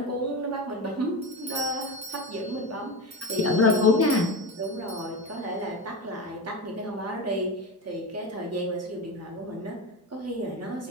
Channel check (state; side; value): normal; both; correlation 0.21